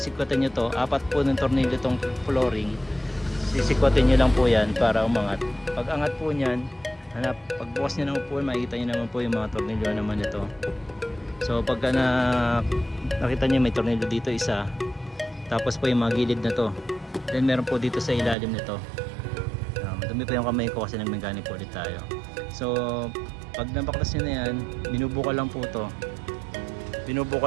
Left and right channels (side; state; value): left; drops out; at 18.4 s